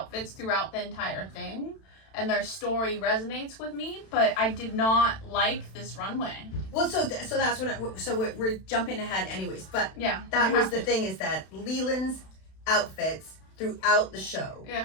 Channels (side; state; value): right; late; 32 ms